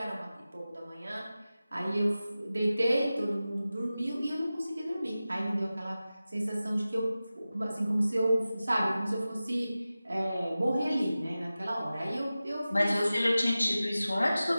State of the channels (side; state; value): both; inverted; correlation -0.95